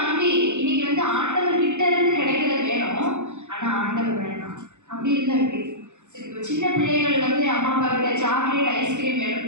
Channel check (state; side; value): late; left; 0.84 ms